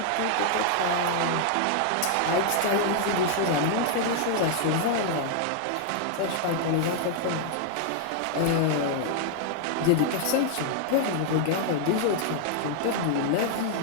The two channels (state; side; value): different; both; correlation 0.00